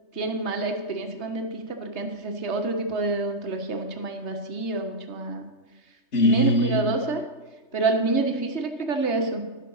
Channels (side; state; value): right; late; 3.3 ms